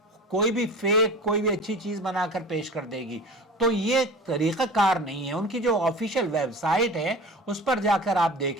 कोई भी फेक, कोई भी अच्छी चीज बनाकर पेश कर देगी। तो ये तरीका कार नहीं है। उनकी जो ऑफिशियल वेबसाइट है उस पर जाकर आप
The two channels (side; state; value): both; normal; correlation 0.37